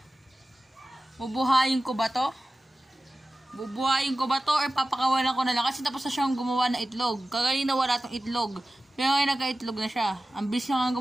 Bubuhayin ko ba to? Bubuhayin ko ba to or papakawalan ko na lang? Kasi tapos na siyang gumawa ng itlog. Kaganina wala tong itlog. Pero ngayon nagka-itlog na siya. Ang bilis na nga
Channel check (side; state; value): both; normal; correlation 0.95